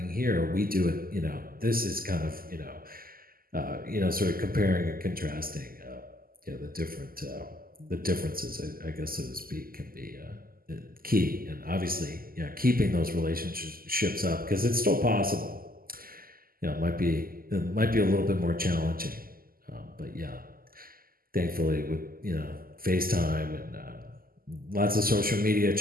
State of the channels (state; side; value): late; left; 0.42 ms